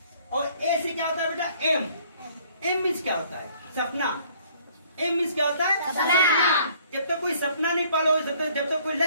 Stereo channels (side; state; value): both; inverted; correlation -0.59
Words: और ए से क्या होता है बेटा एम। एम मीन्स क्या होता है सपना। एम मीन्स क्या होता है सपना। जब तक कोई सपना नहीं पालोगे, जब तक कोई